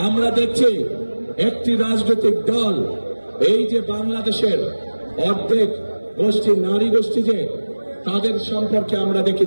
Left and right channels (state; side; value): inverted; both; correlation -1.00